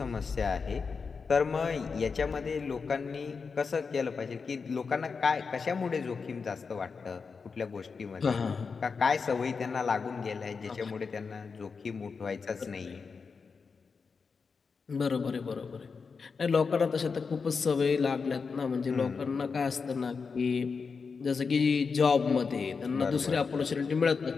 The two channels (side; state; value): right; quieter; 5.2 dB